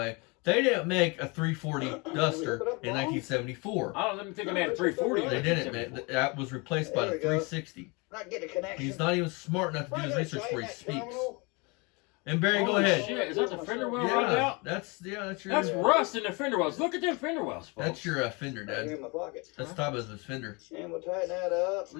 they didn't make a 340 Duster in 1974. I don't even think I made a 340. They didn't, man. That was replaced by the 360. Not get a connection. He's not even smart enough to do his research before he speaks. And Barry, go ahead. Shit, is that the fender well rotted Yeah, out? that's your. That's rust in the fender wells. Look at them fender wells, folks. That's your fender, Right here Dad. in my pocket. That's top of his fender. And we'll tighten that up.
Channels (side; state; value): right; quieter; 28.7 dB